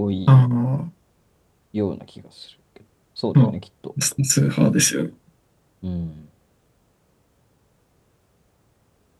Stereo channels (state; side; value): identical; both; correlation 1.00